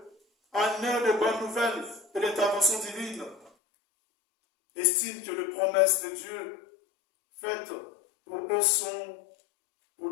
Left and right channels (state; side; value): drops out; right; at 3.5 s